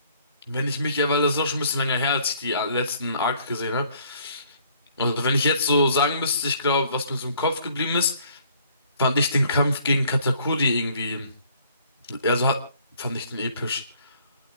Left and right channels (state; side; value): inverted; both; correlation -0.60